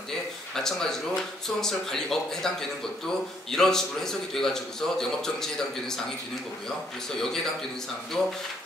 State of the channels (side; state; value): both; normal; correlation 0.69